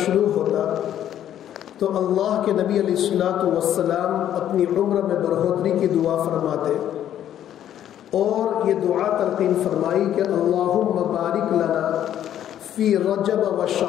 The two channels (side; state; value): right; quieter; 10.9 dB